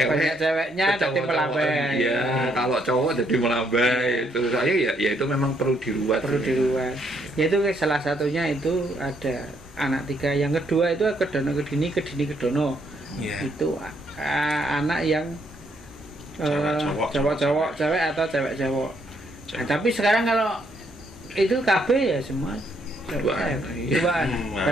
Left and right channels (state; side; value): normal; both; correlation 0.72